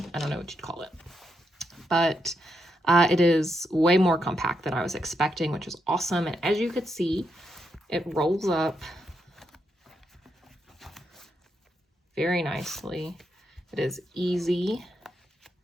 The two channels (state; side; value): normal; both; correlation 0.82